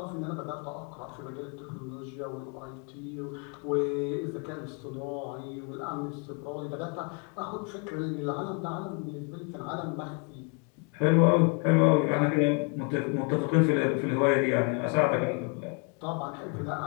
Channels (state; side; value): quieter; right; 37.0 dB